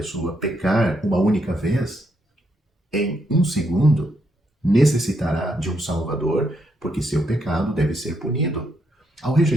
pecar uma única vez, em um segundo, necessitará de um Salvador, porque seu pecado deve ser punido. Ao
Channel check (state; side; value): normal; both; correlation 0.77